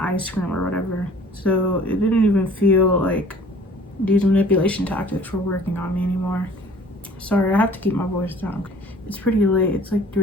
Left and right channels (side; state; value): both; normal; correlation 0.51